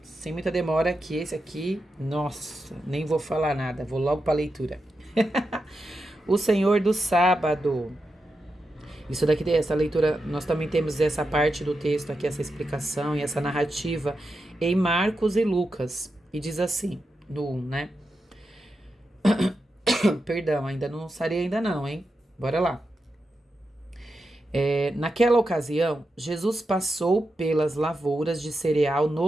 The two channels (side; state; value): both; normal; correlation 0.88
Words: sem muita demora, que esse aqui, nossa, nem vou falar nada, vou logo para a leitura. O Senhor do sábado. Isso daqui, essa leitura, nós também temos essa parte do texto aqui, essa explicação e essa narrativa em Marcos e Lucas. E diz assim, no 1, né? Perdão, ainda não sarei ainda não, hein? Bora lá. Naquela ocasião, Jesus passou pelas lavouras de cereal